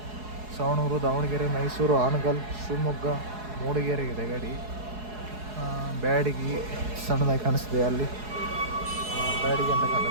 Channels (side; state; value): left; late; 4.7 ms